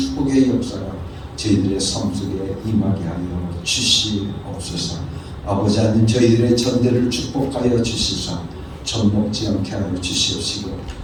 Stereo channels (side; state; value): both; identical; correlation 1.00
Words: 역사가 저희들의 삶 속에 임하게 하여 주시옵소서. 아버지 하나님, 저희들의 전대를 축복하여 주시사 젖 먹지 않게 하여 주시옵시고